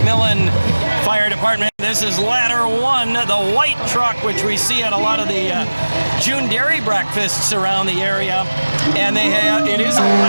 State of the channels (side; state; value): both; inverted; correlation -1.00